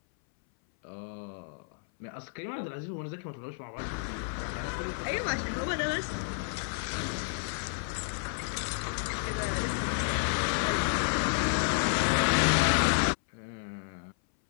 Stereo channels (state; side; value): silent; right; 57 dB below the other